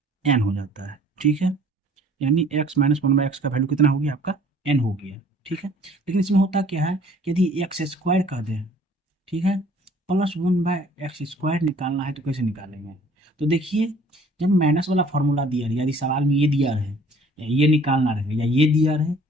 n हो जाता है। ठीक है, यानी x-1/x का वैल्यू कितना हो गया आपका, n हो गया। ठीक है, लेकिन इसमें होता क्या है, यदि एक्स स्क्वायर कर दें, ठीक है, +1/x² निकालना है तो कैसे निकालेंगे? तो देखिए, जब माइनस वाला फॉर्मूला दिया रहे, यदि सवाल में ये दिया रहे या ये निकालना रहे या ये दिया रहे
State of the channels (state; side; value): normal; both; correlation 0.54